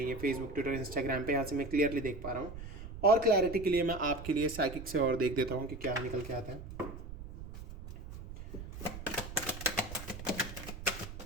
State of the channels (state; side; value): noise; right; rumble, 11 dB below the sound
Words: ये फेसबुक, ट्विटर, इंस्टाग्राम पे, यहाँ से मैं क्लियरली देख पा रहा हूँ। और क्लैरिटी के लिए मैं आपके लिए साइकिक से और देख देता हूँ कि क्या निकल के आता है।